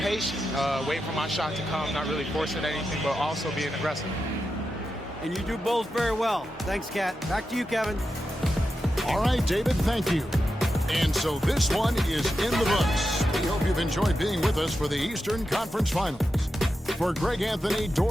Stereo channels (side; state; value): both; normal; correlation 0.89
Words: waiting for my shot to come, not really forcing anything, but also being aggressive. And you do both very well. Thanks, Kat. Back to you, Kevin. All right, David, thank you. And so this one is in the books. We hope you've enjoyed being with us for the Eastern Conference Finals. For Greg Anthony,